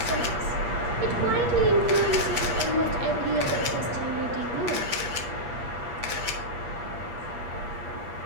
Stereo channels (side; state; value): left; late; 8.4 ms